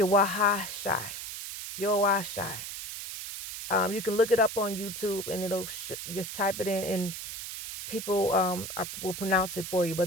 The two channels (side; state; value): right; noise; hiss, 8 dB below the sound